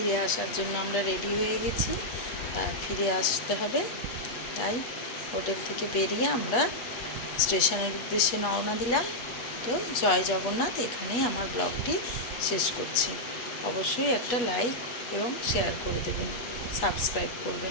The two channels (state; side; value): late; right; 8.3 ms